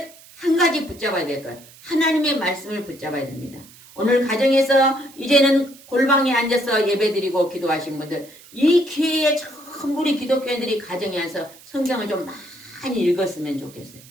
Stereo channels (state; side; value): noise; right; hiss, 22 dB below the sound